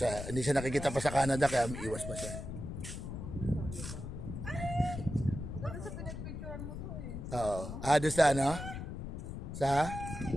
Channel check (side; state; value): left; noise; rumble, 7 dB below the sound